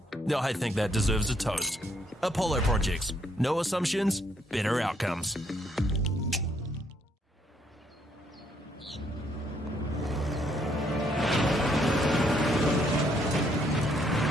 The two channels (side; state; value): both; normal; correlation 0.71